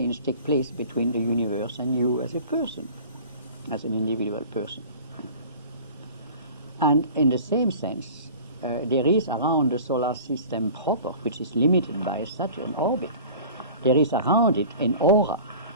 takes place between the universe and you as a person, as an individual person. And in the same sense, there is around the solar system proper, which is limited by Saturn orbit, there is around it an aura,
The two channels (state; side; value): inverted; both; correlation -0.42